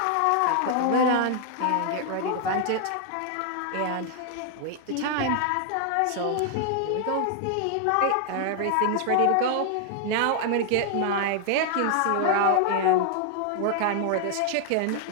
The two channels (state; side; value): different; both; correlation 0.00